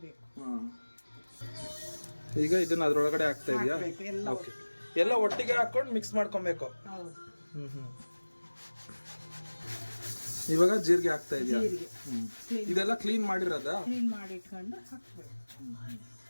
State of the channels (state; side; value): inverted; both; correlation -1.00